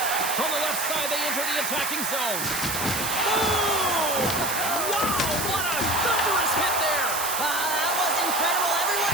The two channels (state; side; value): noise; right; hiss, 2 dB below the sound